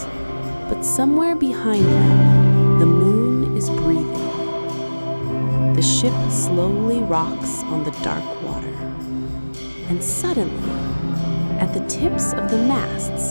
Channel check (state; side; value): inverted; both; correlation -1.00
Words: but somewhere behind them, the moon is breathing. The ship slowly rocks on the dark water, and suddenly, at the tips of the